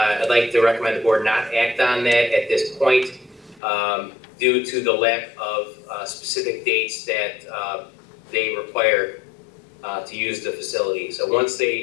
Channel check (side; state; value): right; drops out; at 3.6 s